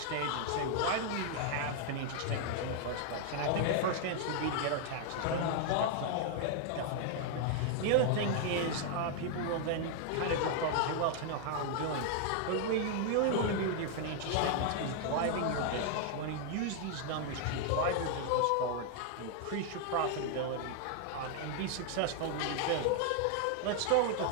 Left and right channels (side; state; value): both; different; correlation 0.00